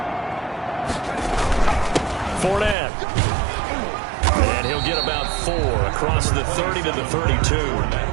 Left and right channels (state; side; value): drops out; left; at 2.8 s